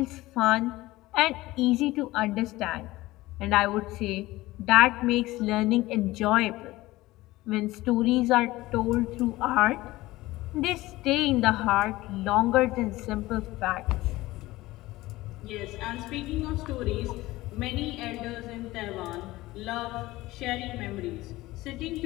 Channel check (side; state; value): right; quieter; 18.5 dB